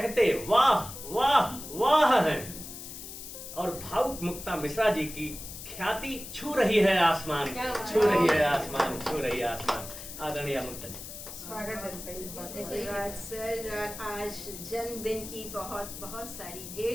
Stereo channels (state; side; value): noise; left; hiss, 11 dB below the sound